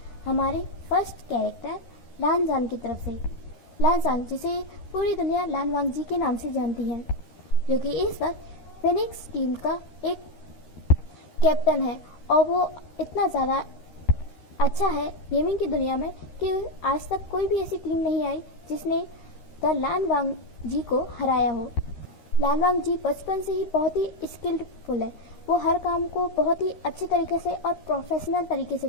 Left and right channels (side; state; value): right; late; 13 ms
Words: हमारे फर्स्ट कैरेक्टर लानजान की तरफ से। लानजान, जिसे पूरी दुनिया लान वांग जी के नाम से जानती है, जो कि इस वक्त फिनिक्स टीम का एक कैप्टन है। और वो इतना ज़्यादा अच्छा है गेमिंग की दुनिया में कि आज तक कोई भी ऐसी टीम नहीं आई जिसने द लान वांग जी को हराया हो। लान वांग जी बचपन से ही बहुत ही स्किल्डफुल है। वो हर काम को बहुत ही अच्छे तरीके से और प्रोफेशनल तरीके से